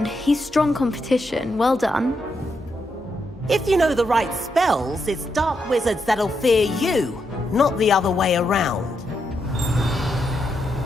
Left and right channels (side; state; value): both; normal; correlation 0.82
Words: He's strong competition. Well done. If you know the right spells, it's dark wizards that'll fear you, not the other way around.